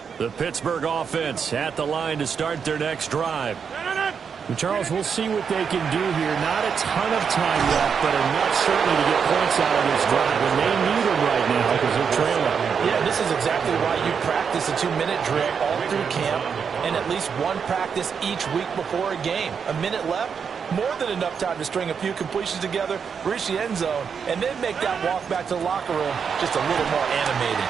The Pittsburgh offense at the line to start their next drive. Charles, we'll see what they can do here. Not a ton of time left, but enough certainly to get points out of this drive. And they need them right now because they're trailing. Yeah, this is exactly why you practice a 2-minute drill all through camp and at least one practice each week before a game. A minute left, more than enough time to string a few completions together, reach the end zone, and then make that walk back to the locker room just a little more animated.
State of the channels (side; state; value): left; quieter; 6.6 dB